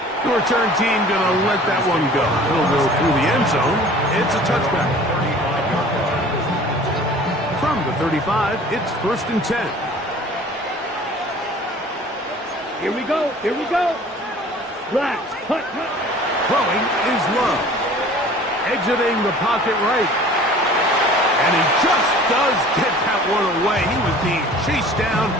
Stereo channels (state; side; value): normal; both; correlation 0.47